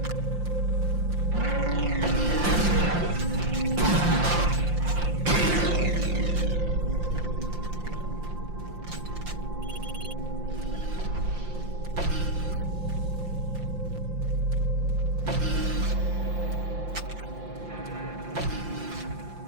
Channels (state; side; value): late; left; 5.7 ms